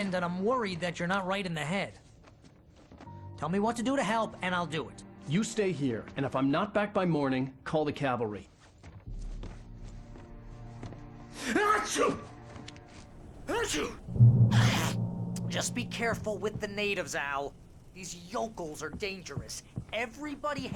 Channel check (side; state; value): both; identical; correlation 1.00